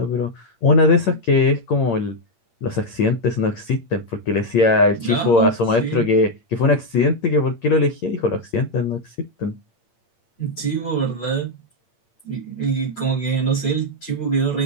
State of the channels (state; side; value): late; right; 8.7 ms